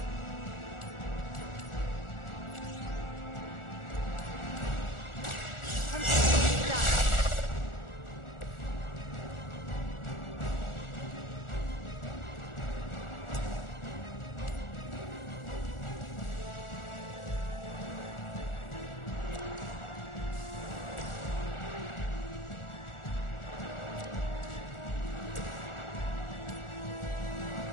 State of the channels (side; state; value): right; late; 1.4 ms